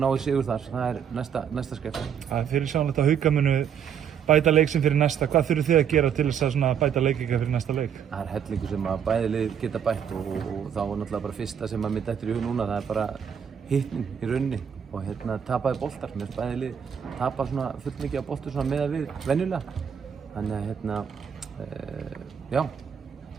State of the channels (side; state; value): left; quieter; 8.0 dB